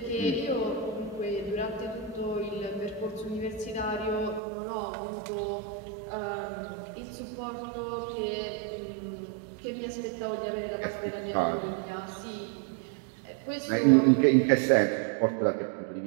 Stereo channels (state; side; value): drops out; left; at 4.4 s